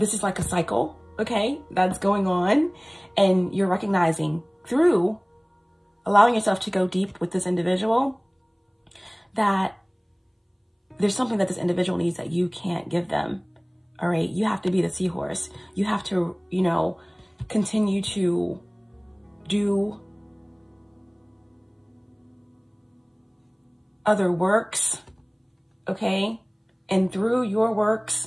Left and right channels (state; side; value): identical; both; correlation 1.00